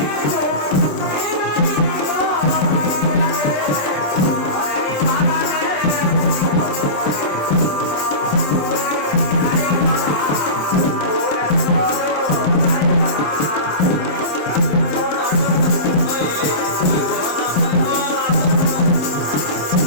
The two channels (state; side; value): late; right; 27 ms